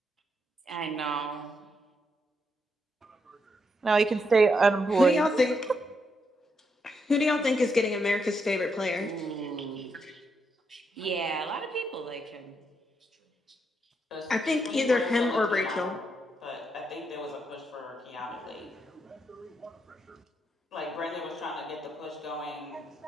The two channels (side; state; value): both; normal; correlation 0.79